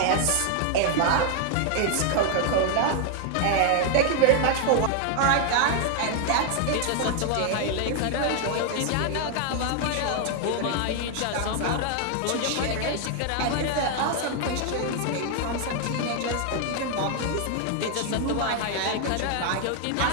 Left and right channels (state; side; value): different; both; correlation 0.00